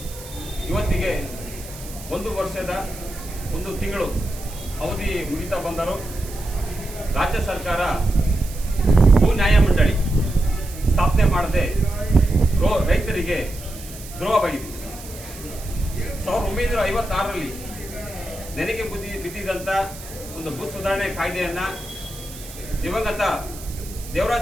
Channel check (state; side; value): noise; right; hiss, 15 dB below the sound